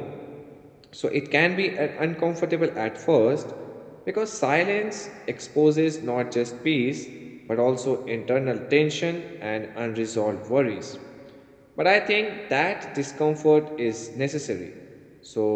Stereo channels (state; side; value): identical; both; correlation 1.00